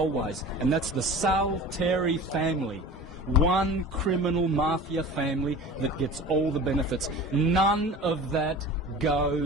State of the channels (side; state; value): both; normal; correlation 0.38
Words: and that's the Salteri family. One criminal mafia family that gets all the benefits. None of that